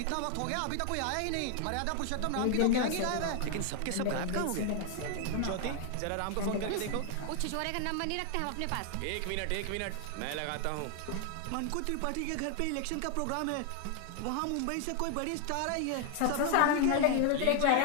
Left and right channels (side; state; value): both; different; correlation 0.00